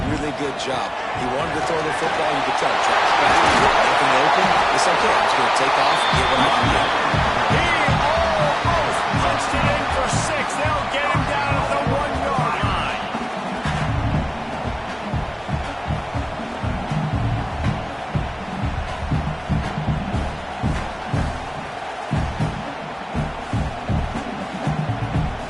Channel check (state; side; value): identical; both; correlation 1.00